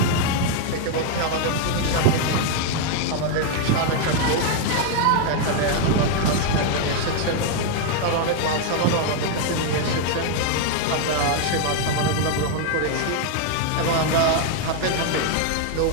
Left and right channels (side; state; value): both; different; correlation 0.00